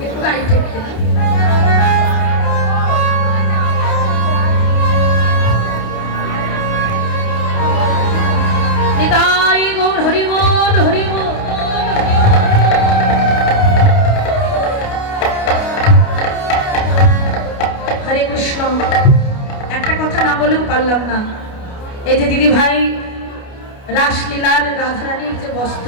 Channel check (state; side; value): late; right; 28 ms